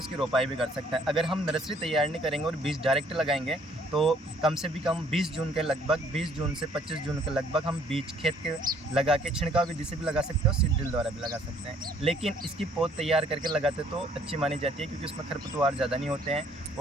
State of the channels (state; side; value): normal; both; correlation 0.62